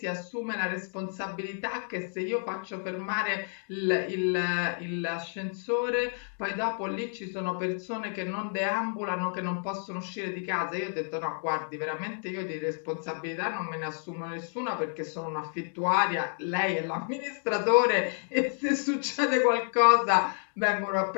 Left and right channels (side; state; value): right; silent; 58 dB below the other